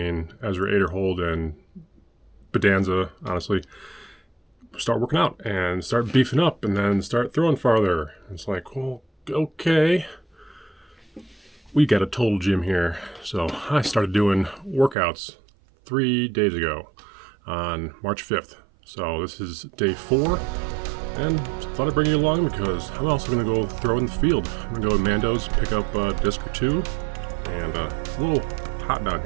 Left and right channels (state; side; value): drops out; left; at 15.0 s